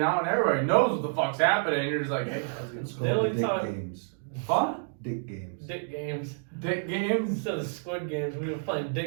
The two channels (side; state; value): left; silent; digital silence